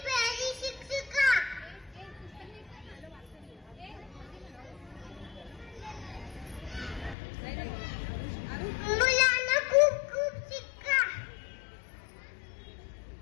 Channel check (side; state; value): right; drops out; at 7.2 s